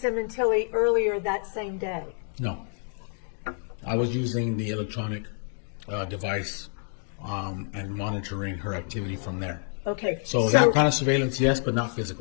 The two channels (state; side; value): silent; right; 60 dB below the other